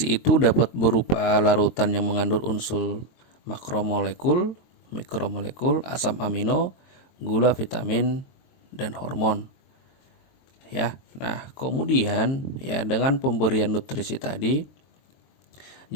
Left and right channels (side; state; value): right; late; 23 ms